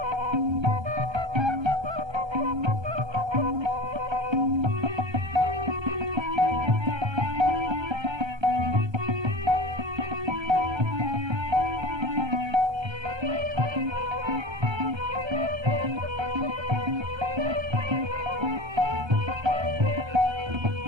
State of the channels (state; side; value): late; left; 1.3 ms